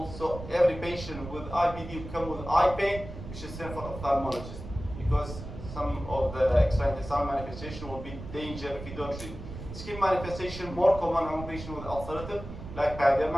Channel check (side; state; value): right; noise; rumble, 11 dB below the sound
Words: So every patient with IBD will come with eye pain, we should send for ophthalmologist because some of the extraintestinal manifestation will be danger if you don't treat. Skin manifestation more common among patients with ulcerative, like